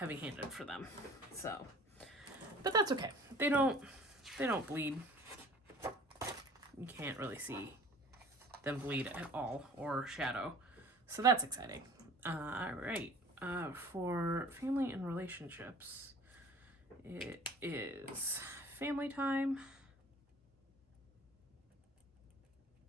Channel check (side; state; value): both; normal; correlation 0.46